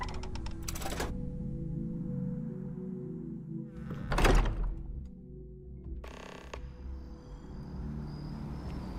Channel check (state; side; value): identical; both; correlation 1.00